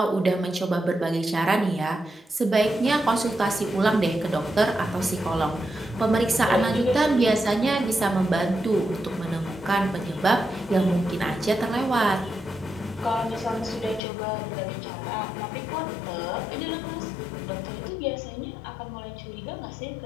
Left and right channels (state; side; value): drops out; right; at 14.0 s